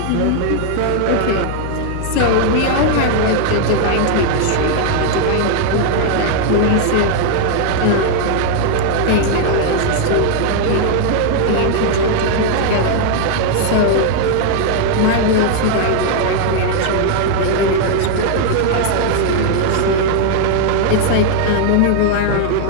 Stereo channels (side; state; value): both; different; correlation 0.00